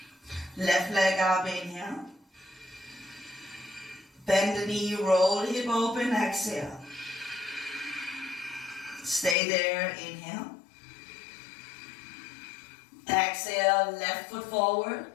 Left leg up, inhale. Bend the knee, roll the hip open, exhale. Stay there, inhale. Exhale, left foot forward,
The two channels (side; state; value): right; drops out; at 9.3 s